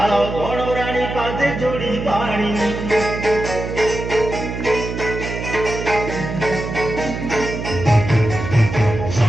বনরানী পাদে জড়ি পানি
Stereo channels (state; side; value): noise; right; hum, 6 dB below the sound